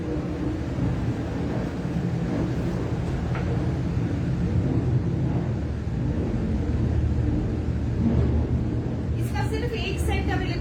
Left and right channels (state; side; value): identical; both; correlation 1.00